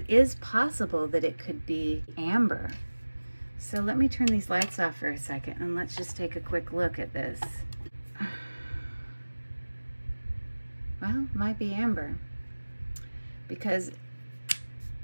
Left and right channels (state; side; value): inverted; both; correlation -1.00